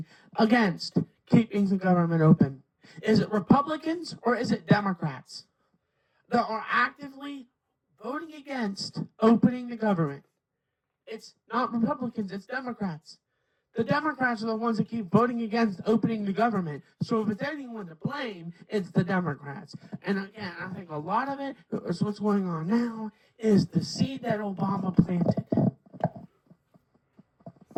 against keeping the government open? Is it Republicans or is it Democrats that are actively voting against opening the government? It's not Republicans, it's Democrats. The Democrats are the ones that keep voting against opening the government. So if it's anyone to blame, it's the Democrats. And again, I think a lot of it is what's going on now is the seed that Obama planted.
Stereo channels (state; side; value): identical; both; correlation 1.00